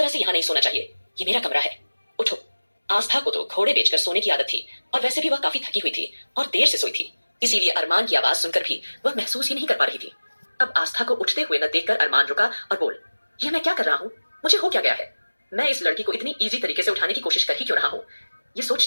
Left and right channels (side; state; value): both; inverted; correlation -1.00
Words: से यहाँ नहीं सोना चाहिए, ये मेरा कमरा है, उठो। आस्था को तो घोड़े बेचकर सोने की आदत थी और वैसे भी वह काफी थकी हुई थी और देर से सोई थी, इसीलिए अरमान की आवाज सुनकर भी वह महसूस ही नहीं कर पा रही थी। अब आस्था को उठते हुए न देखकर अरमान रुका और बोल, यह मैं क्या कर रहा हूँ? मुझे हो क्या गया है? मैं इस लड़की को इतनी इजी तरीके से उठाने की कोशिश कर ही क्यों रहा हूँ? ये